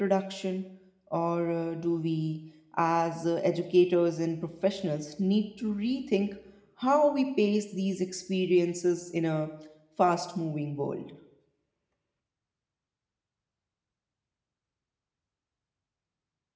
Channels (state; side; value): identical; both; correlation 1.00